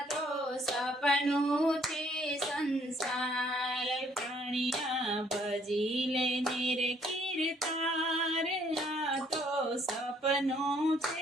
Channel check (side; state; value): both; normal; correlation 0.64